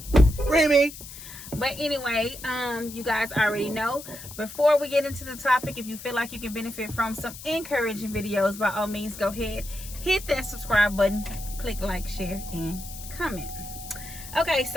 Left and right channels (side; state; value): left; noise; hiss, 13 dB below the sound